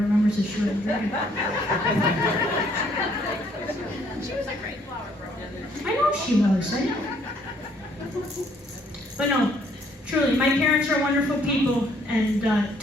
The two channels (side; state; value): both; normal; correlation 0.65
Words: remembers that she wasn't drinking. She was a great flower girl. I know she was. I know. But no, truly, my parents are wonderful people, and